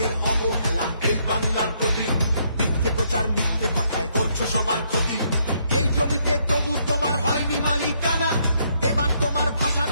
অবহেলা এই বাংলার প্রতি মিথ্যে প্রচার মিথ্যে কথায় করছো সবার ক্ষতি এই জমিতে তবু তোমার হয়নি মালিকানা এবার তোমার ভাষার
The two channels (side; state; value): both; inverted; correlation -0.72